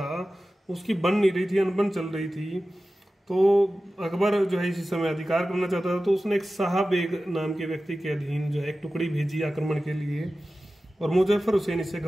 उसकी बन नहीं रही थी, अनबन चल रही थी। तो अकबर जो है इसी समय अधिकार करना चाहता था। तो उसने एक शाह बेग नाम के व्यक्ति के अधीन जो है एक टुकड़ी भेजी आक्रमण के लिए, और मुजफ्फर हुसैन इससे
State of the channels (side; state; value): both; normal; correlation 0.95